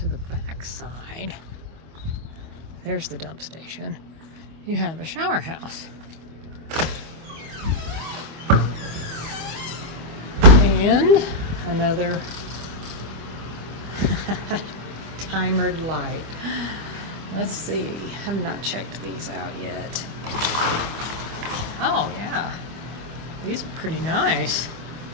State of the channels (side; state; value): left; late; 25 ms